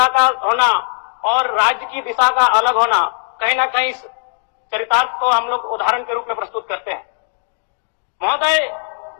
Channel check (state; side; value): silent; right; 67 dB below the other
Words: का होना और राज्य की दिशा का अलग होना, कहीं ना कहीं चरितार्थ को हम लोग उदाहरण के रूप में प्रस्तुत करते हैं। महोदय,